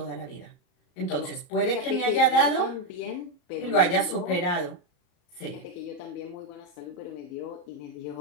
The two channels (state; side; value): late; right; 34 ms